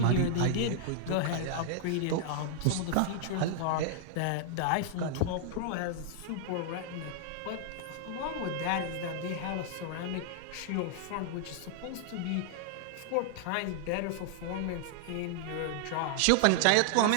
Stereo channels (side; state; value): both; different; correlation -0.01